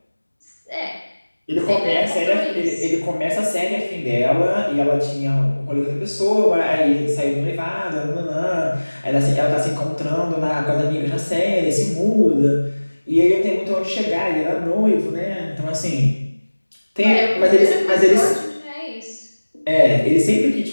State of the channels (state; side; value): inverted; both; correlation -1.00